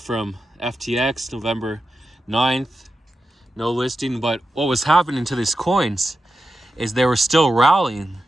FTX, November 9th, no listing. But what was happening to these coins is they were still rallying.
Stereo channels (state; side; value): normal; both; correlation 0.90